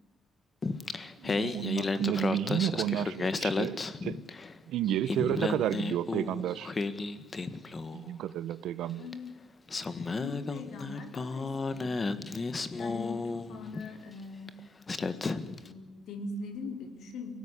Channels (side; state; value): both; normal; correlation 0.69